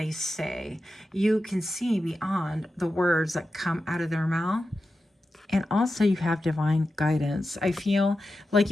say. You can see beyond the words that come out of their mouth. And also you have divine guidance. I feel like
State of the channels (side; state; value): both; normal; correlation 0.91